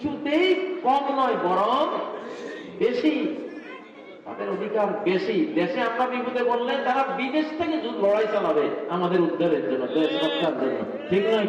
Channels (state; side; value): identical; both; correlation 1.00